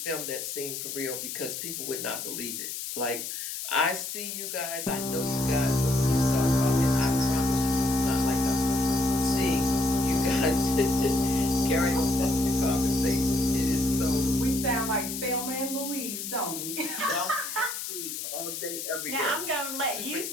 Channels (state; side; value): noise; left; hiss, 6 dB below the sound